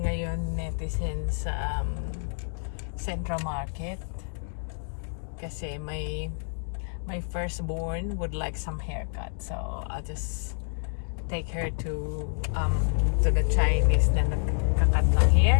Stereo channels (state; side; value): silent; right; digital silence